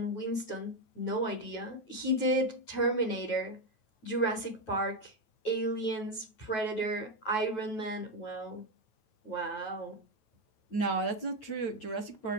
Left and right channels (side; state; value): right; late; 9.2 ms